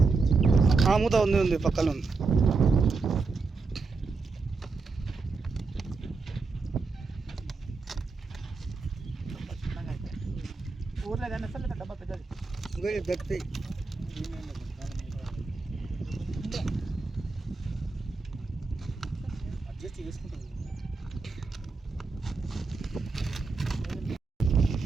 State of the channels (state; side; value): quieter; left; 4.1 dB